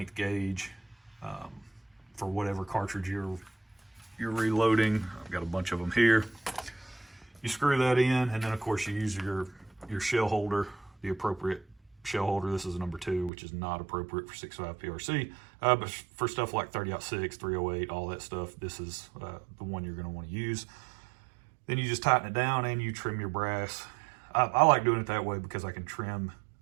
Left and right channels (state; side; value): drops out; left; at 13.3 s